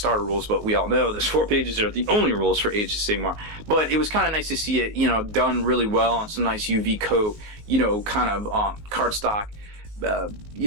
rules, but we all know those 4 pages are the only rules for Age of Sigmar. But it was kind of nice to see it, you know, done really well on some nice UV coat, you know, kind of cardstock,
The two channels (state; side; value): late; left; 19 ms